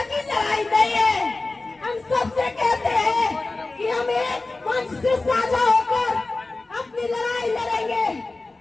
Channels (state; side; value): quieter; right; 3.3 dB